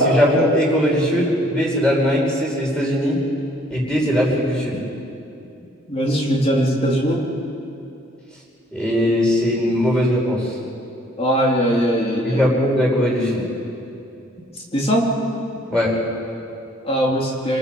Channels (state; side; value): normal; both; correlation 0.62